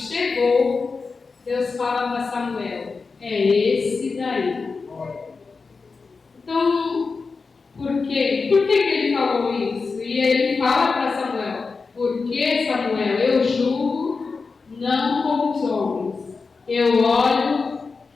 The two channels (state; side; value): quieter; right; 4.5 dB